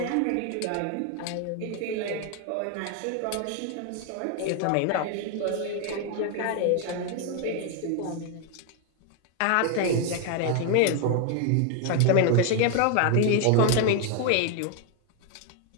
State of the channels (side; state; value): both; different; correlation 0.01